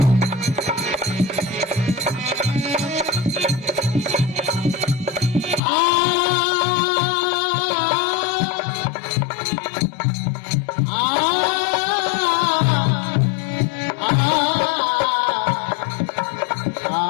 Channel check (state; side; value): drops out; right; at 5.6 s